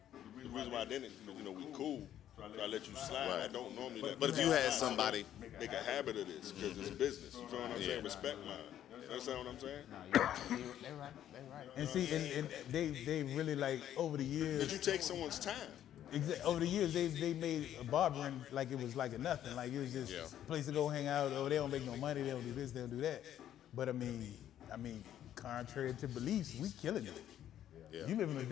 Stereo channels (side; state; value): right; quieter; 11.1 dB